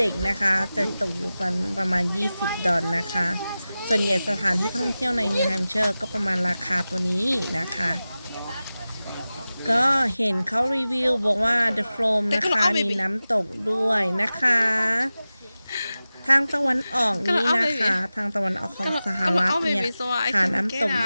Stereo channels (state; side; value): inverted; both; correlation -0.95